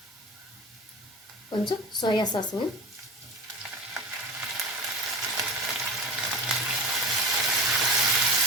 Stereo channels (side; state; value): both; normal; correlation 0.33